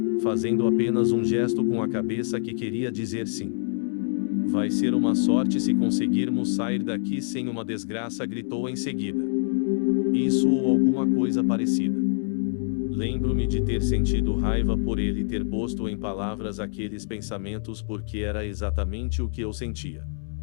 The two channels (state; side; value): silent; right; 61 dB below the other